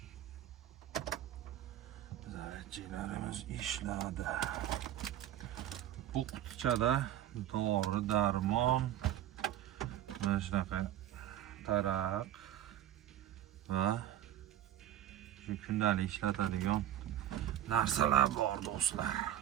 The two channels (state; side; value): quieter; left; 12.0 dB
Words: Zaryadchiklarimiz ishladi. Bu qutichada dori, darmon, mana shunaqa taraq va shu kundalik ishlatadigan narsalar bor do'stlar.